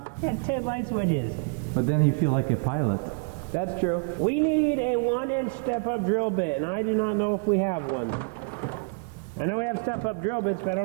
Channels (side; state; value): left; quieter; 37.5 dB